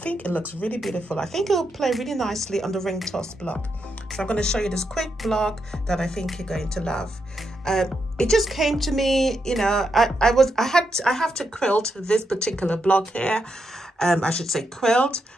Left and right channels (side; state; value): both; normal; correlation 0.83